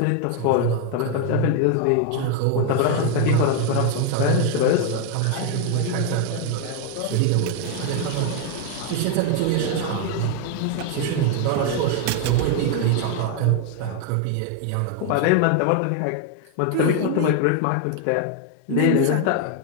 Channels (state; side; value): different; both; correlation 0.01